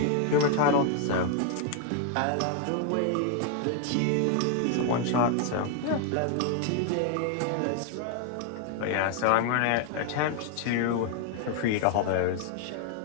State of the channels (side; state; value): both; different; correlation 0.00